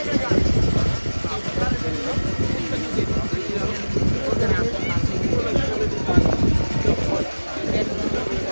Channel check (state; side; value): inverted; both; correlation -1.00